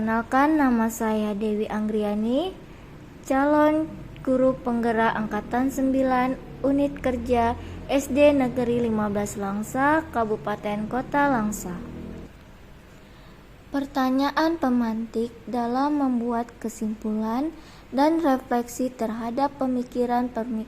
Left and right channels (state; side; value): identical; both; correlation 1.00